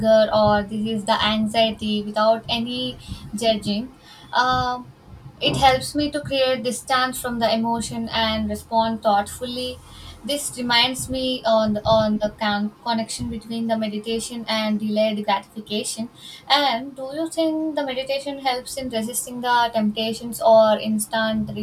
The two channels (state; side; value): identical; both; correlation 1.00